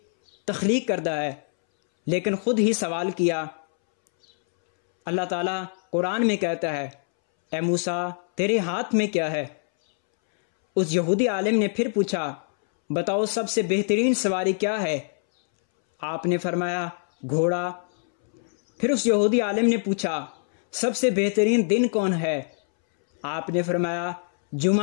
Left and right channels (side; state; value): right; silent; 62 dB below the other